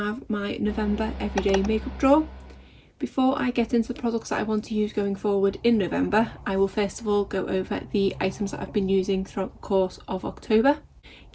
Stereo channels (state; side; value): identical; both; correlation 1.00